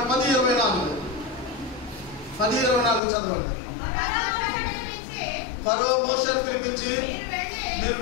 చదవండి. ఫరో మోషేను పిలిపించి, మీరు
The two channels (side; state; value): right; drops out; at 3.0 s